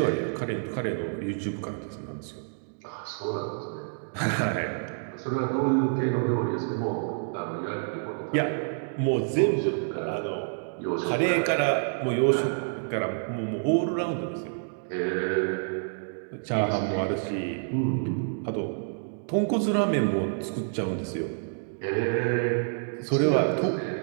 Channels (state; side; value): silent; left; digital silence